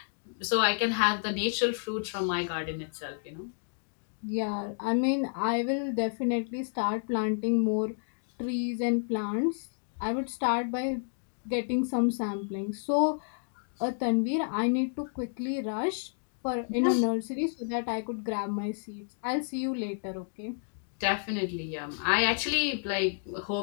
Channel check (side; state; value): right; silent; digital silence